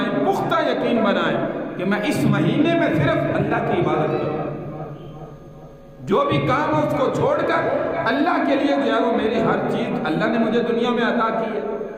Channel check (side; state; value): both; identical; correlation 1.00